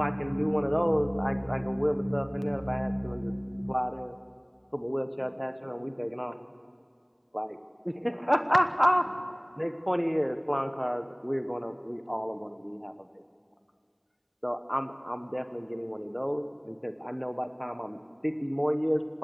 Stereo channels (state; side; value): identical; both; correlation 1.00